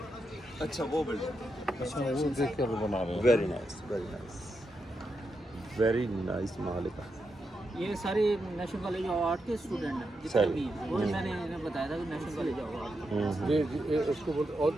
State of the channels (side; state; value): both; normal; correlation 0.85